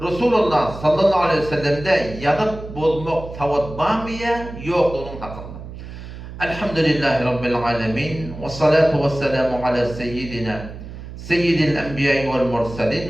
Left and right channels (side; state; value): right; noise; hum, 12 dB below the sound